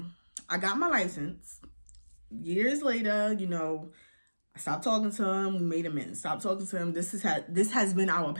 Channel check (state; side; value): inverted; both; correlation -1.00